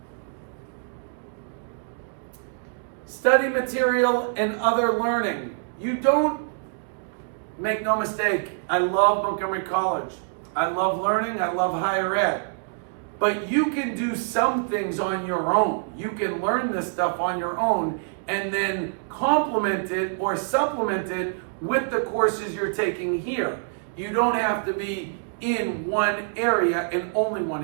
study material and other learning. You don't, make no mistake, I love Montgomery College. I love learning, I love higher ed. But you can do some things on your own. You can learn this stuff on your own and then complement it or supplement it with the courses you're taking here. You don't have to be in one area and only one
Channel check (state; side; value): silent; left; digital silence